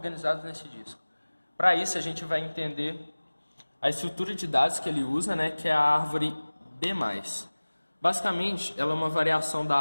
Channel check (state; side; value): inverted; both; correlation -1.00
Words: nesse disco? Para isso a gente vai entender a estrutura de dados que ele usa, né? Que é a árvore B+. Basicamente, ela é uma variação da